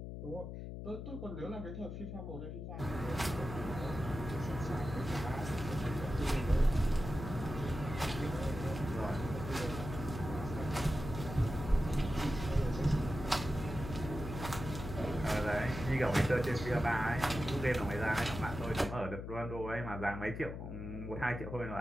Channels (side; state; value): left; noise; hum, 7 dB below the sound